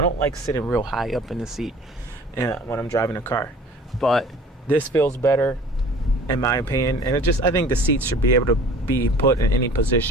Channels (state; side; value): normal; both; correlation 0.47